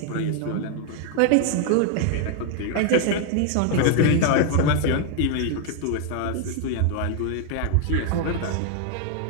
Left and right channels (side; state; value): both; different; correlation 0.00